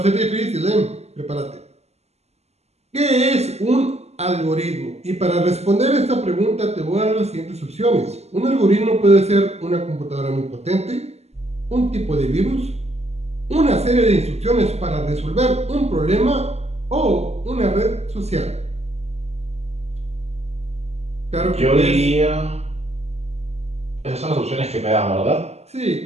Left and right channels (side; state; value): left; late; 0.31 ms